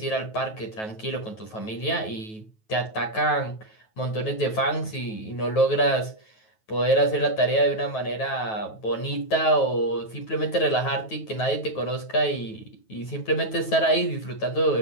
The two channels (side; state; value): right; late; 9.3 ms